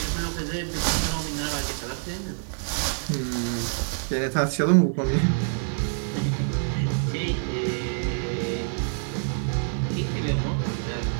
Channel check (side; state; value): left; silent; digital silence